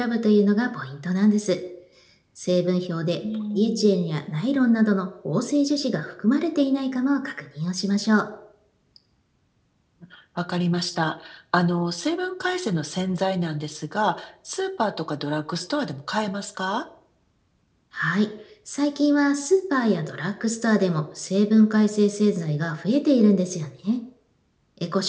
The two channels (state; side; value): identical; both; correlation 1.00